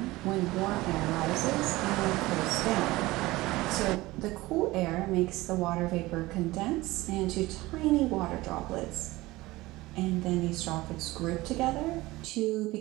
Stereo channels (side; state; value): left; quieter; 19.4 dB